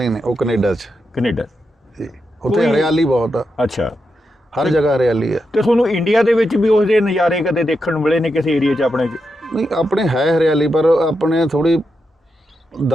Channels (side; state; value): both; normal; correlation 0.86